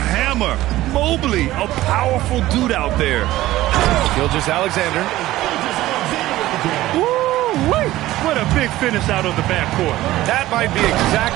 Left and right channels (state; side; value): quieter; left; 16.0 dB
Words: Mobley, a powerful dude out there. Gilgeous-Alexander. Woo-wee! What a big finish out of the backcourt. That might be